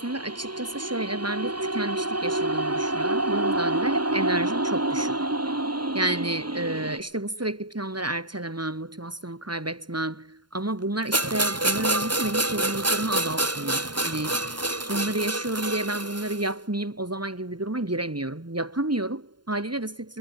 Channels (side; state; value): left; late; 0.71 ms